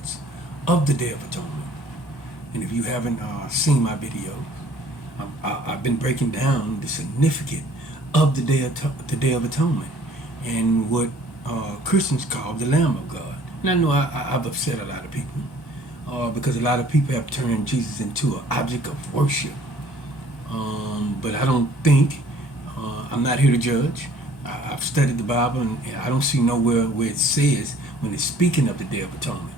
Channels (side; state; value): both; normal; correlation 0.55